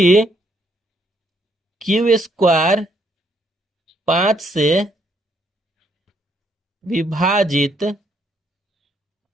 क्यू स्क्वायर 5 से विभाजित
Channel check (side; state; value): both; normal; correlation 0.71